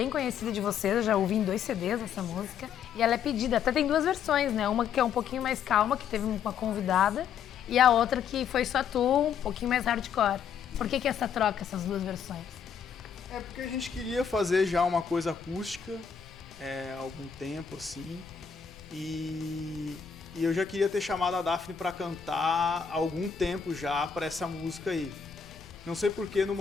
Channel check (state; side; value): quieter; right; 7.3 dB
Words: conhecida de vocês, eu já ouvi em 2 CDs essa música. E ela é pedida, até tem 2 versões, né? Uma que é um pouquinho mais calma, que teve uma convidada, e a outra que foi só tu, um pouquinho mais hardcore. Por que essa troca, essas 2 versões? É porque a gente queria fazer já uma coisa acústica há algum tempo, assim. E eu já queria ter chamado a Daphne pra cantar há algum tempo já pra essa música aí. Não sei porque no